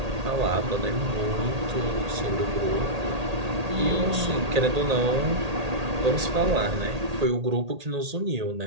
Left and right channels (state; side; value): late; left; 1.8 ms